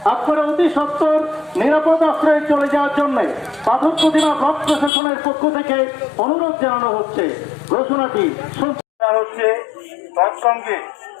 আপনারা অতি সত্বর নিরাপদ আশ্রয়ে চলে যাওয়ার জন্য পাথর প্রতিমা ব্লক প্রশাসনের পক্ষ থেকে অনুরোধ জানানো হচ্ছে। ঘোষণাটি হচ্ছে তৎসঙ্গে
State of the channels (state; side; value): drops out; right; at 4.9 s